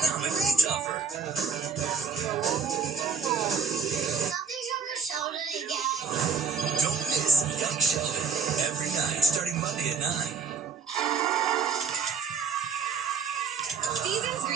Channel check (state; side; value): quieter; left; 5.3 dB